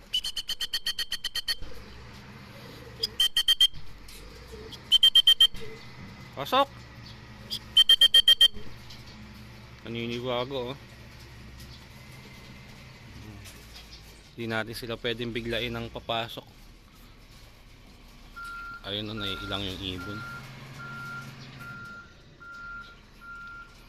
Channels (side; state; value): both; identical; correlation 1.00